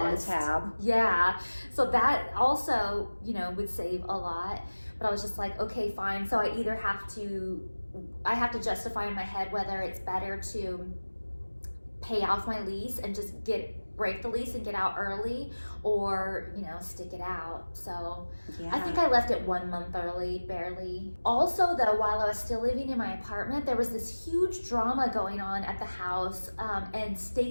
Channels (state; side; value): inverted; both; correlation -1.00